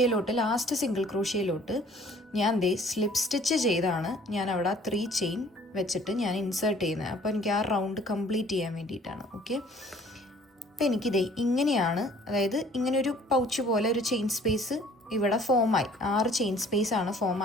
ലാസ്റ്റ് സിംഗിൾ ക്രോഷ്യയിലോട്ട് ഞാൻ സ്ലിപ്പ് സ്റ്റിച്ച് ചെയ്താണ് ഞാൻ അവിടെ 3 ചെയിൻ വെച്ചിട്ട് ഞാൻ ഇൻസേർട്ട് ചെയ്യുന്നത്. അപ്പോൾ എനിക്ക് ആ റൗണ്ട് കംപ്ലീറ്റ് ചെയ്യാൻ വേണ്ടിയിട്ടാണ്. ഓക്കെ, അപ്പോൾ എനിക്കിതേ ഇങ്ങനെയാണ്, അതായത് ഇങ്ങനെ ഒരു പൗച്ച് പോലെ ഒരു ചെയിൻ സ്പേസ് ഇവിടെ ഫോമായി. 6 ചെയിൻ സ്പേസ് ആണ് ഫോം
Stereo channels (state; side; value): normal; both; correlation 0.55